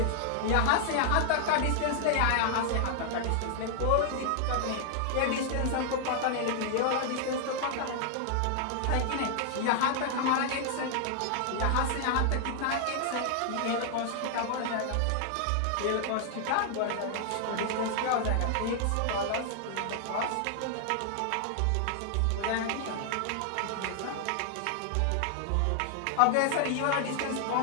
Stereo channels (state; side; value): different; both; correlation 0.00